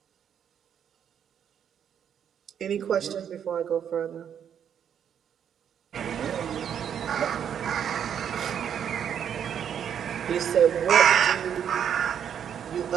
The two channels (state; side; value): quieter; left; 8.7 dB